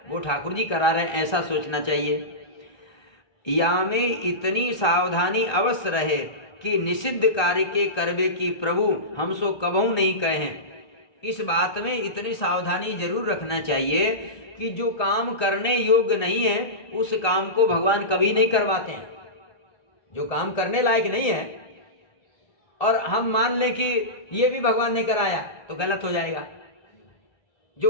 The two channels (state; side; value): late; right; 1.3 ms